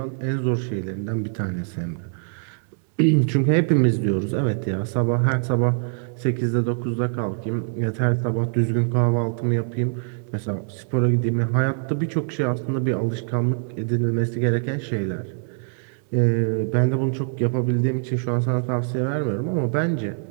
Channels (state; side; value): silent; left; 63 dB below the other